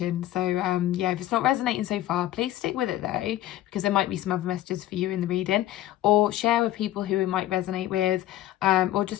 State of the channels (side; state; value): right; quieter; 14.0 dB